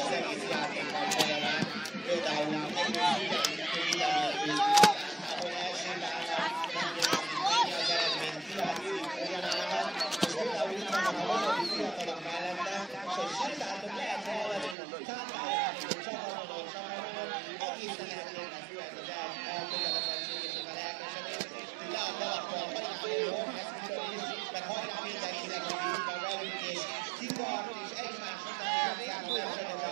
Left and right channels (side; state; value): left; drops out; at 14.8 s